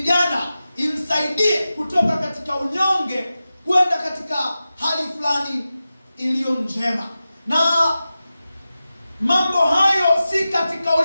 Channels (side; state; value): both; inverted; correlation -0.94